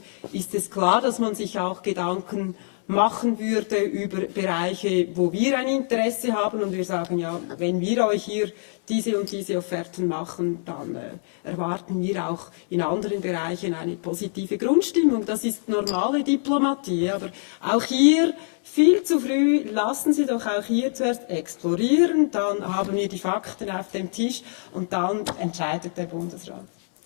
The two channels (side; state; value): right; silent; 62 dB below the other